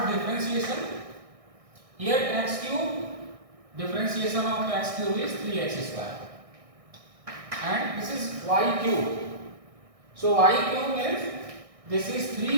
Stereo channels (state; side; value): late; left; 1.6 ms